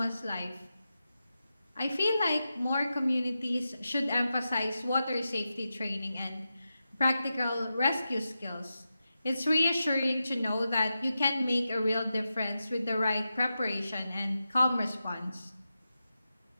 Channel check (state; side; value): inverted; both; correlation -0.90